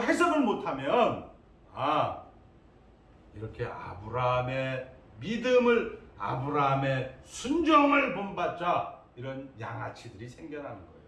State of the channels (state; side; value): identical; both; correlation 1.00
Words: 해석을 못하면 이렇게 아브라함의 믿음을, 아브라함의 순종을 본받자 이런 양아치들이 생겨나는 거예요.